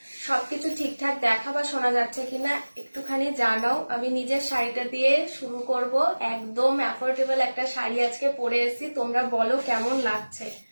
সবকিছু ঠিকঠাক দেখা বা শোনা যাচ্ছে কিনা একটুখানি জানাও। আমি নিজের শাড়িটা দিয়ে শুরু করব। একদম অ্যাফোর্ডেবল একটা শাড়ি আজকে পরে এসেছি, তোমরা বলো কেমন লাগছে।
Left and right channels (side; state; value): both; inverted; correlation -1.00